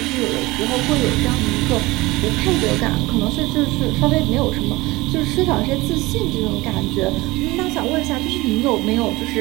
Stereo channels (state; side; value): quieter; left; 21.0 dB